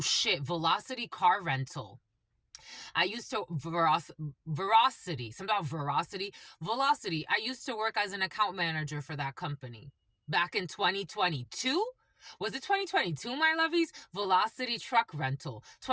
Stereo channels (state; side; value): identical; both; correlation 1.00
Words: car rental. I used to, velocity. I used to work as an account manager for that company back in 2022. Was it 2022, my lovies? Velocity truck rental.